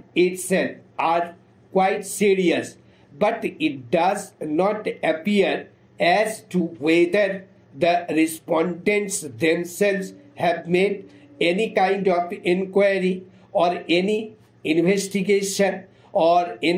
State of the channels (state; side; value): identical; both; correlation 1.00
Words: itself are quite serious, but it does not appear as to whether the respondents themselves have made any kind of inquiry or any investigation or